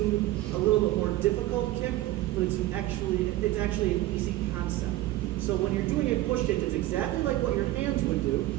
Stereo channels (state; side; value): quieter; left; 16.2 dB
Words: a little bit more difficult kick, but it's actually an easy concept. So when you're doing a push kick, it's exactly like what your hands would do